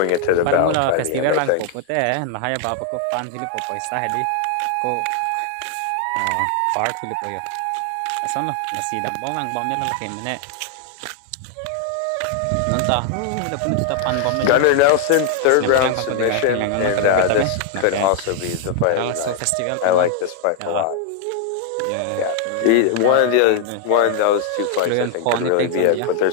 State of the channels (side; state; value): both; different; correlation 0.00